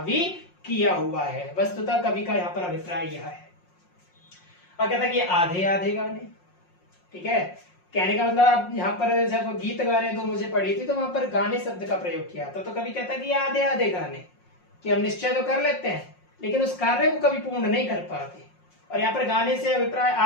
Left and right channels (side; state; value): right; late; 5.6 ms